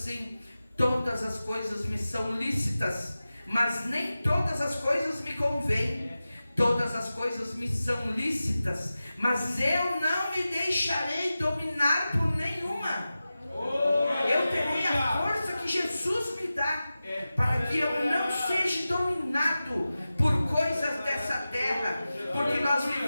todas as coisas me são lícitas, mas nem todas as coisas me convêm. Todas as coisas me são lícitas, mas eu não me deixarei dominar por nenhuma. Eu terei a força que Jesus me dá, para que eu não seja dominado por coisas dessa terra, porque nós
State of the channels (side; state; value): both; inverted; correlation -0.94